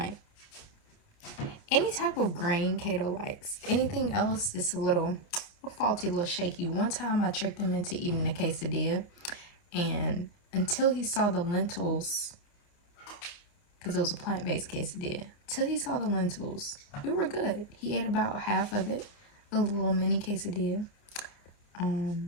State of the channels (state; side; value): late; right; 29 ms